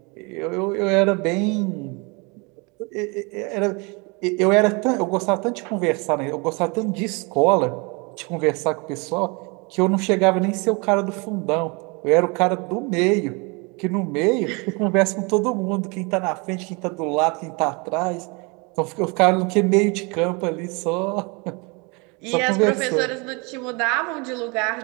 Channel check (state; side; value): quieter; left; 29.9 dB